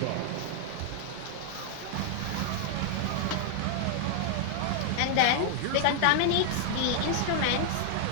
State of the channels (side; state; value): both; different; correlation 0.00